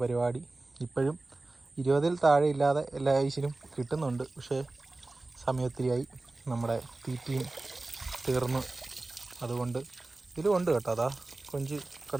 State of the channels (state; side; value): quieter; left; 3.1 dB